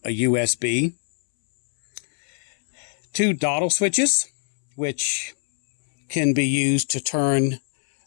a USB, 2 dottle switches, which can be used to turn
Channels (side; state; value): right; silent; 64 dB below the other